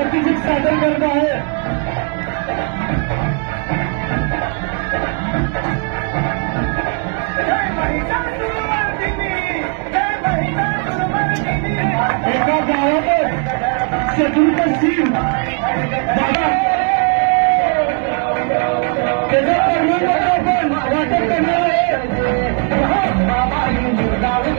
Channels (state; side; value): quieter; left; 35.2 dB